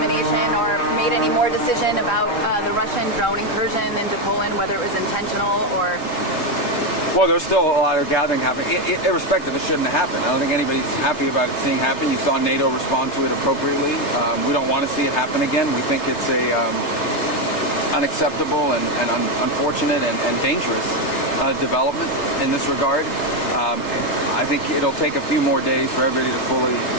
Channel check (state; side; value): late; right; 3.3 ms